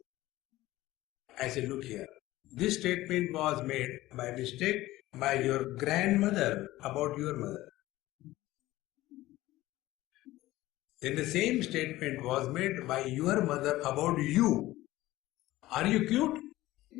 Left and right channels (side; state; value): right; quieter; 16.9 dB